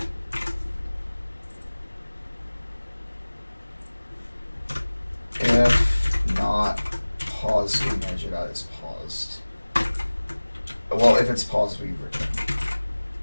If not paused, we measure that as paused. Well, if it's paused, we return.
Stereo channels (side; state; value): both; inverted; correlation -1.00